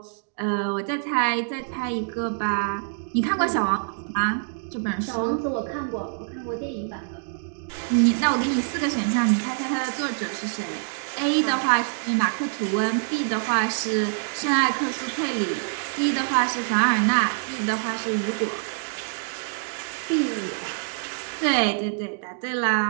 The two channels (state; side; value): silent; left; digital silence